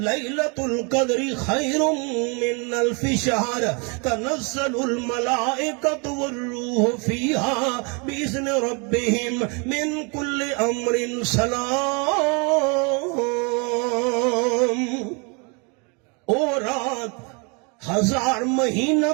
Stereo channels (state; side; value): quieter; left; 33.1 dB